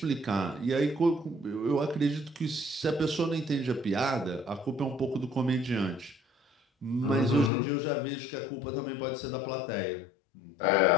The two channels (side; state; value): right; drops out; at 7.5 s